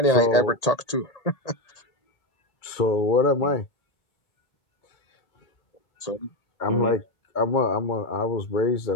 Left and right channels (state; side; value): late; right; 1.8 ms